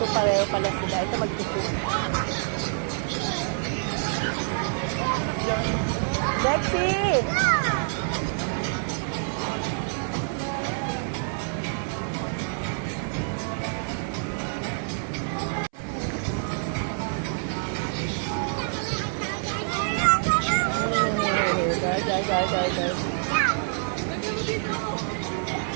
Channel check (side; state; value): left; silent; 60 dB below the other